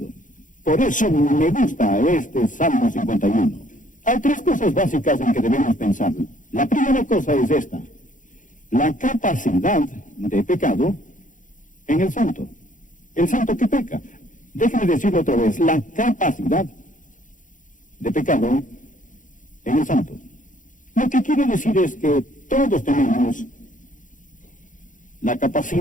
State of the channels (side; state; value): right; late; 0.38 ms